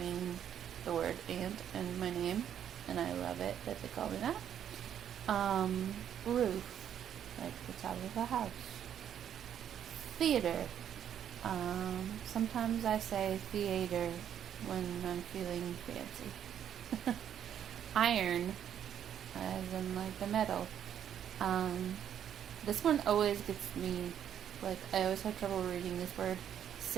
the word aunt and my name. And I love it that they call me that. Roof, like the top of a house. Theater. Sometimes I say theater when I'm feeling fancy. Iron, as in like the metal. This one always gets me, like I always have trouble reading this word.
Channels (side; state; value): left; quieter; 9.5 dB